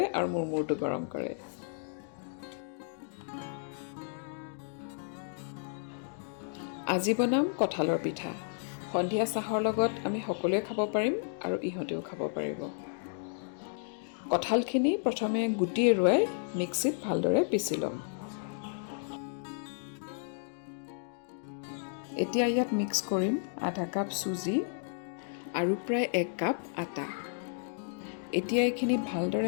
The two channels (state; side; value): silent; right; digital silence